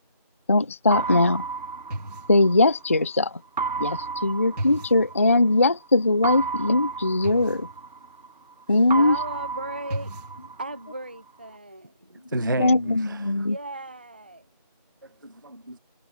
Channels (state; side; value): inverted; both; correlation -0.72